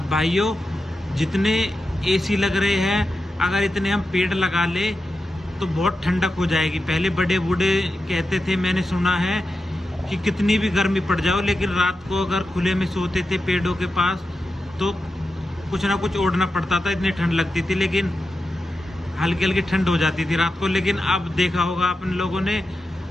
भाइयों जितने एसी लग रहे हैं, अगर इतने हम पेड़ लगा ले तो बहुत ठंडक हो जाएगी। पहले बड़े बूढ़े कहते थे, मैंने सुना है कि कितनी भी गर्मी पड़ जाओ लेकिन रात को अगर खुले में सोते थे पेड़ों के पास तो कुछ ना कुछ ओढ़ना पड़ता था, इतनी ठंड लगती थी, लेकिन हल्की हल्की ठंड हो जाती थी रात को। लेकिन अब देखा होगा अपन लोगों ने,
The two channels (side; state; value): both; normal; correlation 0.90